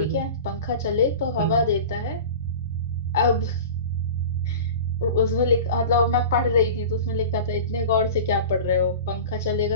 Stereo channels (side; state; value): both; inverted; correlation -0.35